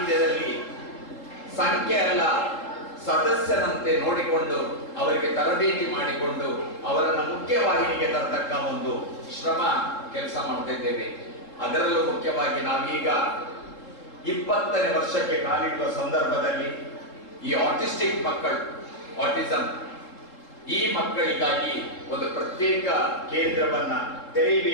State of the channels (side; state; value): right; late; 3.8 ms